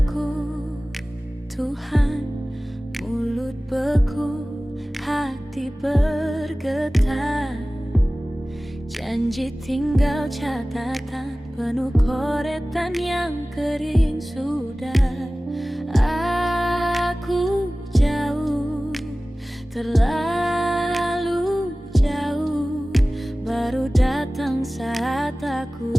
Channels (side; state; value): both; normal; correlation 0.97